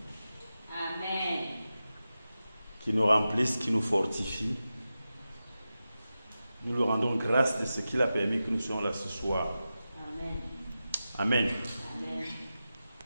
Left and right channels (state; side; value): inverted; both; correlation -0.93